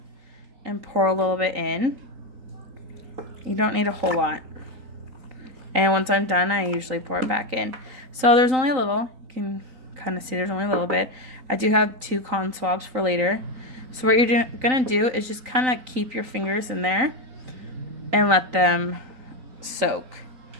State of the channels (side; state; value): left; late; 3.9 ms